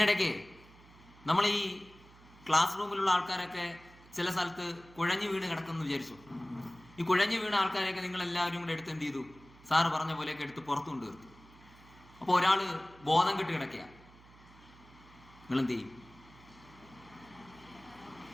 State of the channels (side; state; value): right; noise; hum, 23 dB below the sound